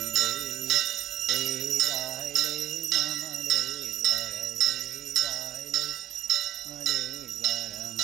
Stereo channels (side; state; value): left; quieter; 12.5 dB